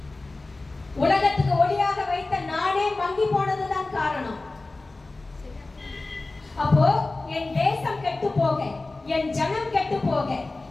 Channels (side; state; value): right; quieter; 3.2 dB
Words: உலகத்துக்கு ஒளியாக வைத்த நானே மங்கி போனதுதான் காரணம். அப்போ என் தேசம் கெட்டு போக, என் ஜனம் கெட்டு போக,